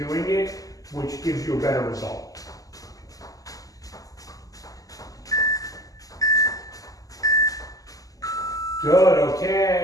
doing it, which gives you a better result. Good,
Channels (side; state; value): right; late; 0.17 ms